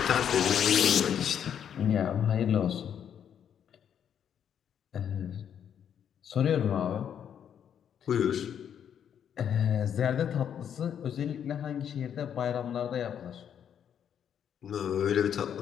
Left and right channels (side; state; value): right; quieter; 8.8 dB